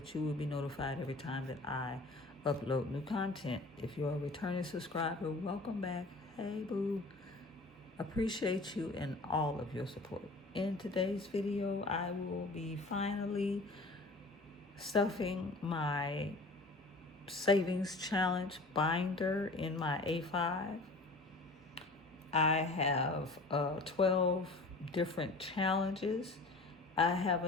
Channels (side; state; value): right; quieter; 3.2 dB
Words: you will be notified every time that I upload new content. If you're a returning subscriber, welcome back. Hey boo, appreciate you and all of your support. In today's video, I will be finally stuffing my savings challenge binder in my A5. I have 12 different challenges. I